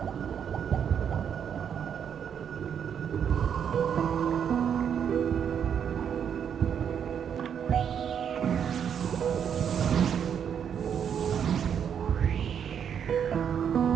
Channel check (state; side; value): quieter; left; 8.1 dB